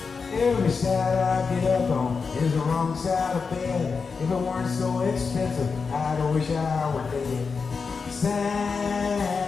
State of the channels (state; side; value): quieter; right; 5.1 dB